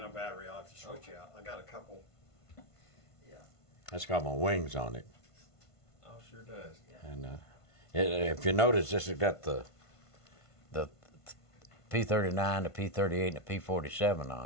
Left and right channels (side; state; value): right; late; 1.5 ms